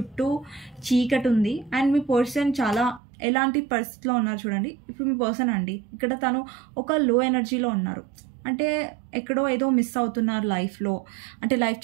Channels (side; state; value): left; drops out; at 3.0 s